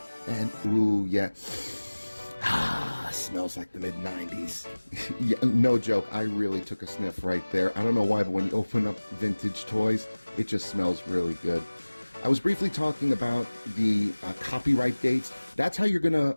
And ooh, yeah. Smells like the mid-90s. Yeah, no joke. I really took a sniff right there. I don't know why, but when you open up vintage toys, it just smells really good. I was briefly talking about the copyright dates. That's how you're going to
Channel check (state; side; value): inverted; both; correlation -1.00